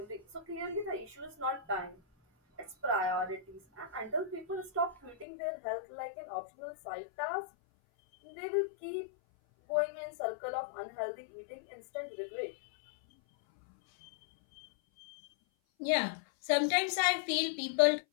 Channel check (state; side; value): drops out; right; at 5.2 s